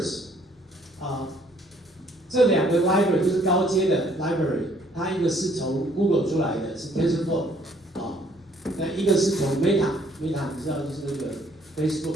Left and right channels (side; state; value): both; normal; correlation 0.63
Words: 这两个 library 就是高阶的 library， 它一个是从 Google 出来的，是 TensorFlow 那一个是从 Meta 你知道就是那个